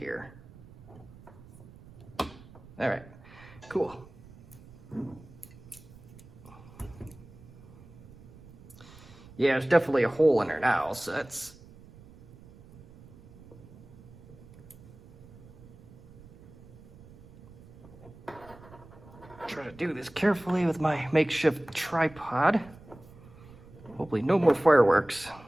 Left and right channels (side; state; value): right; noise; rumble, 21 dB below the sound